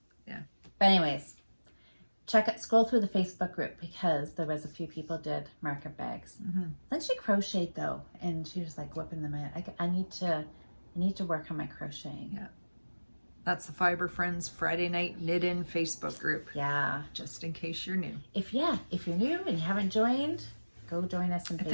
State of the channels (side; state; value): both; inverted; correlation -1.00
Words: Yeah. But anyways, scroll through the Facebook group because there was a few people did market bags. Mm-hmm. Then she crocheted though, and she was like whipping them out. I need to work on my crocheting. Yeah. That's the Fibre Friends Friday Night Knit In Facebook group. Yeah. Just in case you're new. If you're new and you haven't joined, go join us on